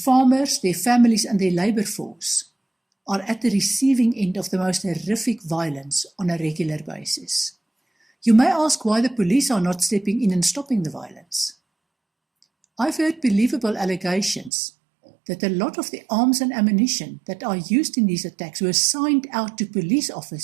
their families and their labour force are at the receiving end of the most horrific violence on a regular basis. You may ask why the police are not stepping in and stopping the violence. I've heard believable allegations that a lot of the arms and ammunition that are used in these attacks were signed out to police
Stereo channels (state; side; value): drops out; left; at 14.5 s